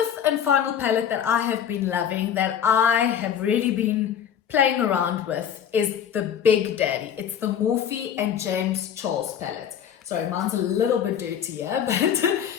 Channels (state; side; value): quieter; right; 8.8 dB